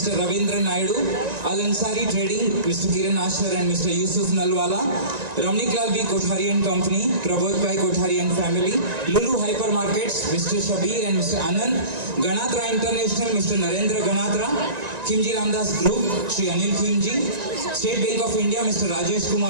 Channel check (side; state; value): left; late; 1.9 ms